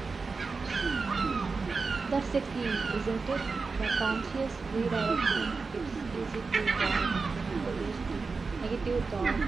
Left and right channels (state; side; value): quieter; left; 4.4 dB